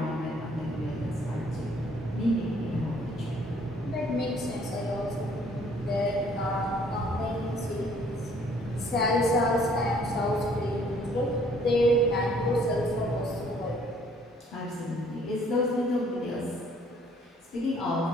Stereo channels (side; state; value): both; normal; correlation 0.60